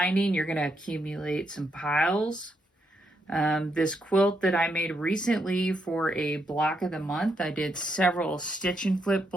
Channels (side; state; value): both; normal; correlation 0.79